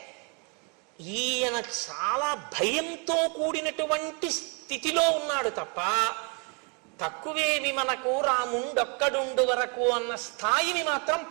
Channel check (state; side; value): quieter; left; 35.1 dB